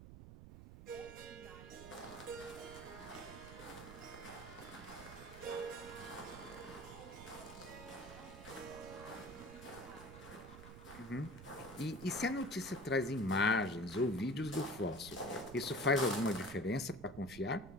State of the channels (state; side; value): noise; right; rumble, 14 dB below the sound